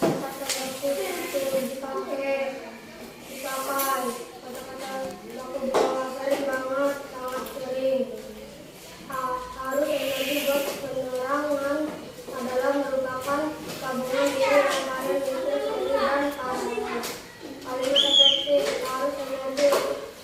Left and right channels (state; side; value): identical; both; correlation 1.00